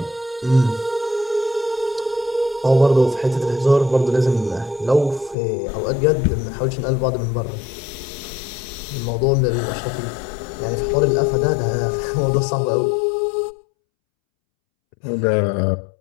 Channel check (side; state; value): right; drops out; at 5.4 s